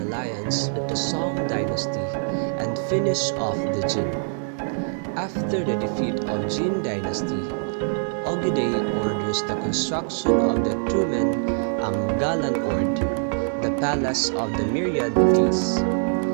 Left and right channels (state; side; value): silent; left; digital silence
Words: with the Song dynasty and finish off the Jin. After the defeat of Jin dynasty, Ogedei orders the construction of the Truman Galan Ord, the palace of the myriad geese,